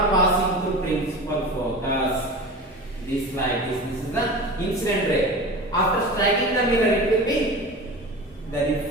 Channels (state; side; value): normal; both; correlation 0.32